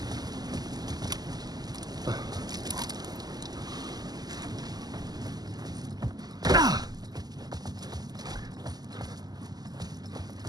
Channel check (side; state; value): left; late; 0.20 ms